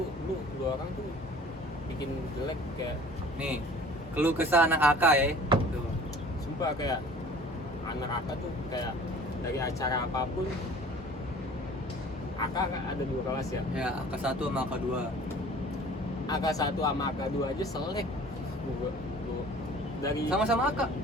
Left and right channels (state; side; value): normal; both; correlation 0.47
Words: lu orang tuh bikin jelek kayak Nih, keluh kesah anak AK ya. Tuh. sumpah kayak anak AK tuh kayak dari acara apapun. AK kan ada 2 kelas ya. Ya, AK1 sama AK2. AK1 sama AK2 aja selek. Gua dari Sama-sama AK.